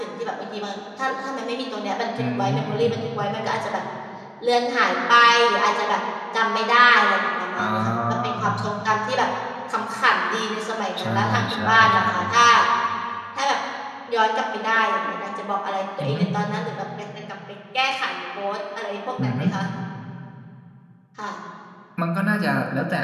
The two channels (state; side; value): identical; both; correlation 1.00